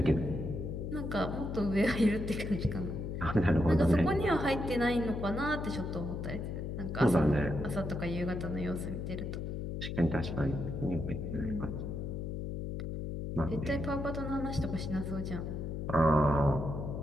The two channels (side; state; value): left; noise; hum, 4 dB below the sound